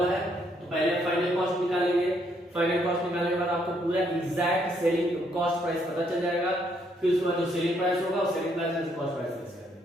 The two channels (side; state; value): both; normal; correlation 0.72